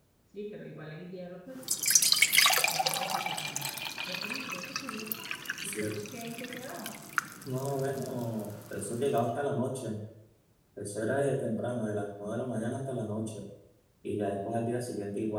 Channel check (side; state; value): both; identical; correlation 1.00